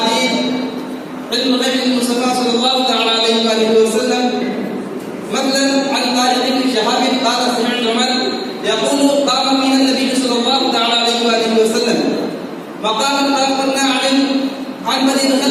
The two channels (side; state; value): both; identical; correlation 1.00